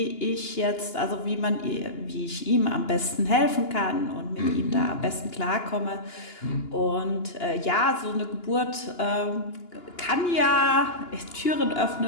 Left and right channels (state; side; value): late; right; 2.9 ms